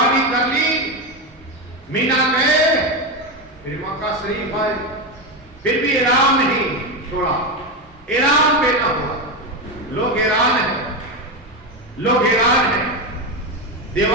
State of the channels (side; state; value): both; normal; correlation 0.13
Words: کر لی، مینا گئے، پھر مکہ شریف آئے، پھر بھی احرام نہیں چھوڑا، احرام پہنا ہوا۔ لوگ حیران ہیں، لوگ حیران ہیں۔